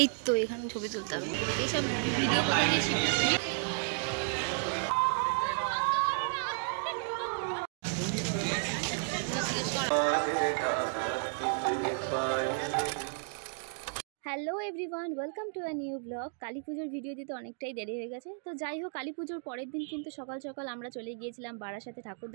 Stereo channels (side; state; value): left; silent; 56 dB below the other